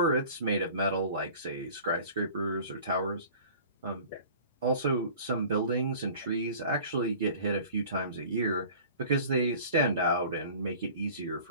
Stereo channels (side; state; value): both; inverted; correlation -0.45